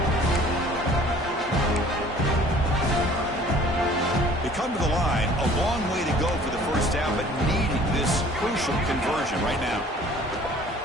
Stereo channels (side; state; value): both; normal; correlation 0.52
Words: They come to the line, a long way to go for the 1st down, but needing this crucial conversion right now.